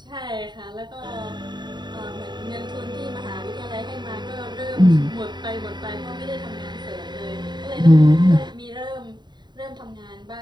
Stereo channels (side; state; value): left; late; 0.21 ms